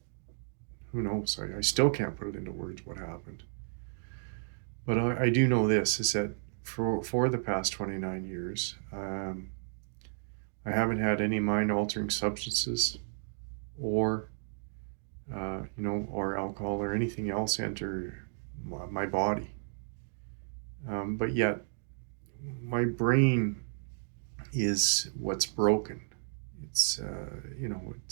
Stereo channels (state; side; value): silent; left; digital silence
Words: who knows? I still can't put it into words what happened. But I do know this is that for the past 29 years, I haven't had any mind altering substances or or alcohol or anything else enter my body. But yet, my brain is what's broken. It's